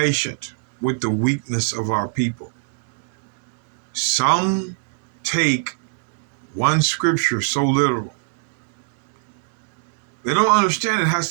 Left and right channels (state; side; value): silent; left; 64 dB below the other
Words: with the weakness of our people. Some take one scripture so literal. They don't understand it has